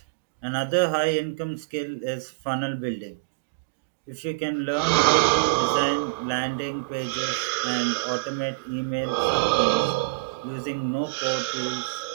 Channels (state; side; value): quieter; left; 25.7 dB